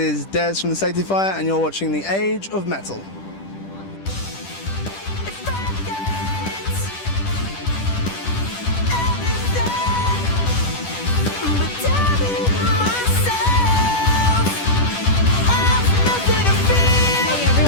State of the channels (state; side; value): late; right; 10 ms